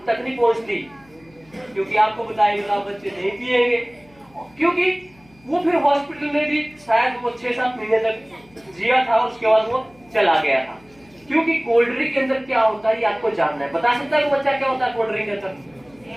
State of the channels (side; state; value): left; noise; hum, 29 dB below the sound